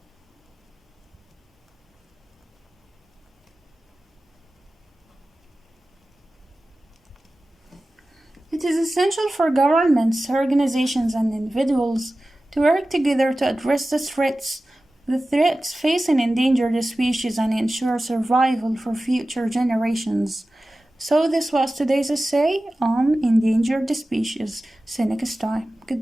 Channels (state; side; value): normal; both; correlation 0.96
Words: It is essential for governments, organizations, and individuals to work together to address the threats facing endangered species and ensure survival for future generations. So this was today's essay on endangered species. See you next time.